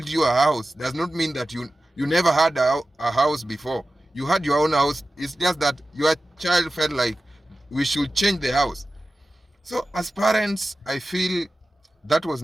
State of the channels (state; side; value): normal; both; correlation 0.95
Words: you a house does not mean that you never had a house before. You had your own house. It's just that your child felt like we should change the house. So as parents, I feel that was